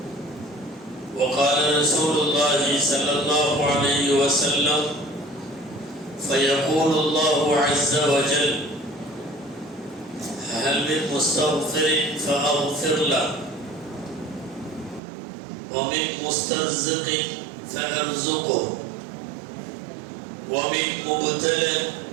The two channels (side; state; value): left; drops out; at 15.0 s